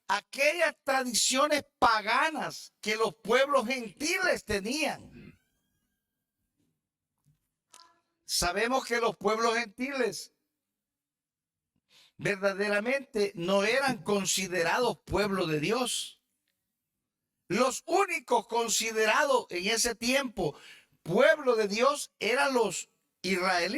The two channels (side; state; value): both; identical; correlation 1.00